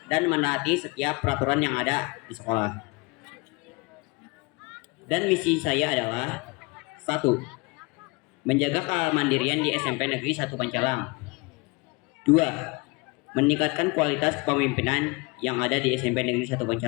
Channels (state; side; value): quieter; right; 27.0 dB